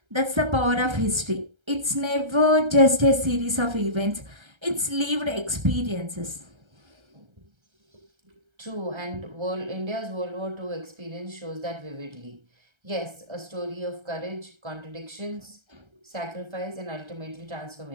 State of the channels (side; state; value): left; late; 1.3 ms